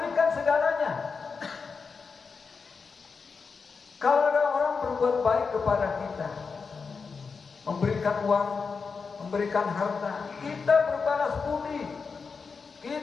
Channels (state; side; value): quieter; right; 5.1 dB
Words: segalanya. Kalau ada orang berbuat baik kepada kita, memberikan uang, memberikan harta, kita berbalas budi.